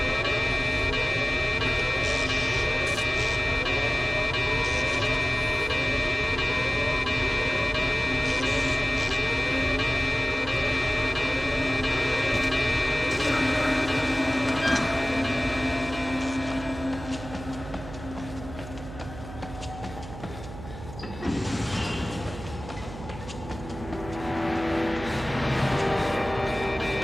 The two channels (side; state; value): right; noise; hum, 12 dB below the sound